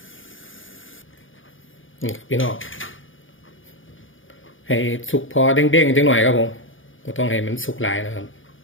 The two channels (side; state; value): right; late; 0.57 ms